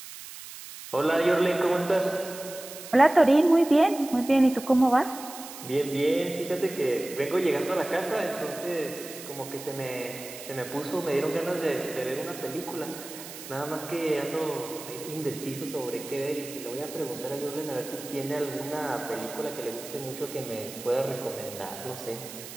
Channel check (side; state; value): right; noise; hiss, 13 dB below the sound